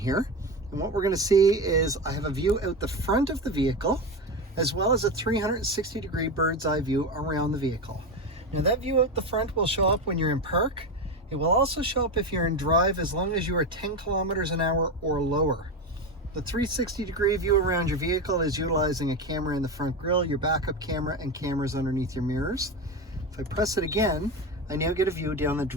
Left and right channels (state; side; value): normal; both; correlation 0.18